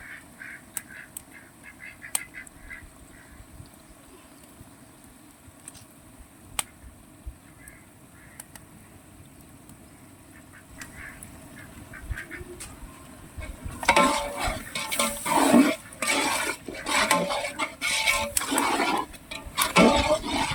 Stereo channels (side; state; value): both; identical; correlation 1.00